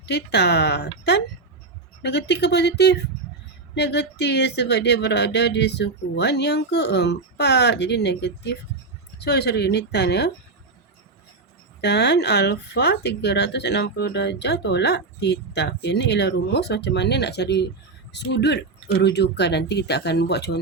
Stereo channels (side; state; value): left; quieter; 3.8 dB